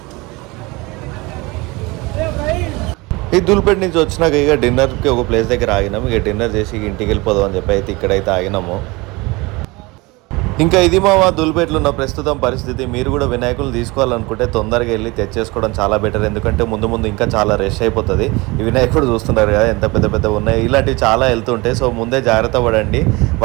ఈ ధూల్పేట నుంచి వచ్చినాక ఇక డిన్నర్కి ఒక ప్లేస్ దగ్గర ఆగినాము. ఇక డిన్నర్ చేసి ఇంటికి వెళ్ళిపోదాం అని చెప్పి అయితే ఇక్కడైతే ఆగినాము. ఇంకా ఇది మా ధూల్పేటలో ఉన్న ప్రస్తుతం పరిస్థితి. మీరు కూడా వినాయకులు తీసుకోవాలనుకుంటే తొందరగా వెళ్ళి తెచ్చేసుకోవడం చాలా బెటర్. ఎందుకంటే ముందు ఇంకా చాలా రష్ అయిపోతుంది. ఈ వినాయకుడు చూస్తున్నారు కదా ఎంత పెద్ద ఉన్నాయి. ఇలాంటివి చాలా వెళ్తుంటాయి. సో ముందే జాగ్రత్త పడండి.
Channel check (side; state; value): left; quieter; 24.1 dB